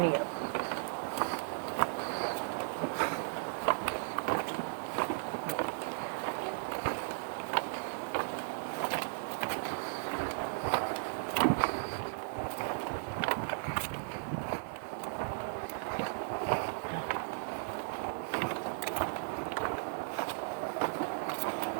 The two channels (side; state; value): left; silent; digital silence